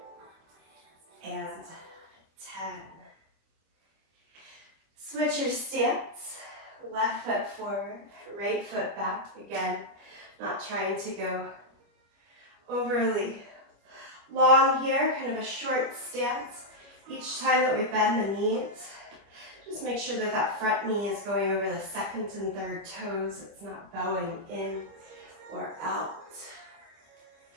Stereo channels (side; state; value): left; late; 25 ms